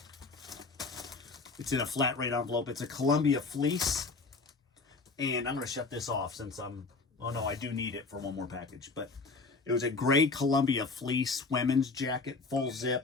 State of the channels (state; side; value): quieter; right; 4.0 dB